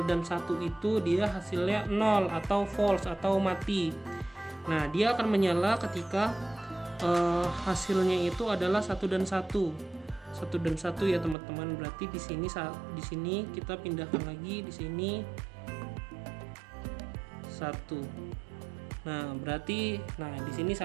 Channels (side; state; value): left; drops out; at 11.4 s